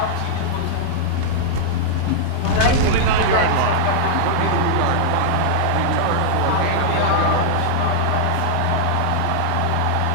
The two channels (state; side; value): different; both; correlation -0.01